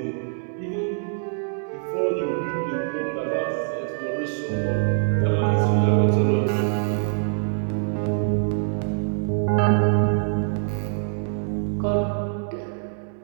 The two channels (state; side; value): silent; left; 62 dB below the other